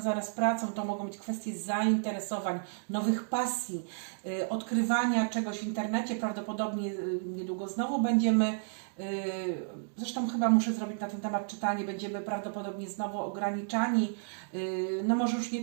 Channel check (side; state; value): left; silent; digital silence